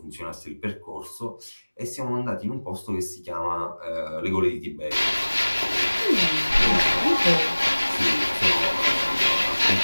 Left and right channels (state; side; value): inverted; both; correlation -1.00